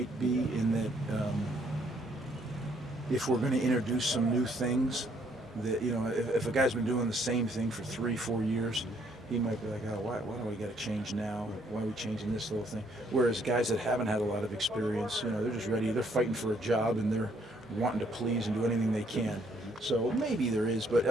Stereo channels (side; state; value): both; normal; correlation 0.68